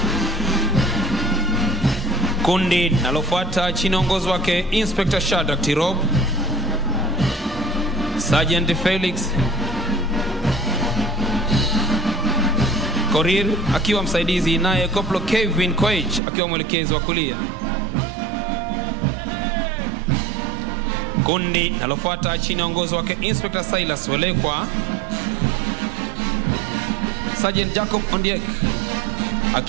Kundi nalofuata chini ya uongozi wake Inspector Shadrack Tirop, Sergeant Felix Korir akiwa msaidizi, naye Koplo Kevin Koech akiwa mwelekezi wa kulia. Kundi nalofuata chini ya uongozi wake Inspector Silas Welekwa, Sergeant Jacob Ondiek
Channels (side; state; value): left; drops out; at 16.2 s